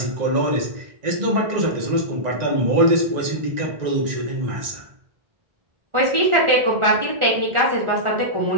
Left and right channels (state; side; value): late; left; 1.4 ms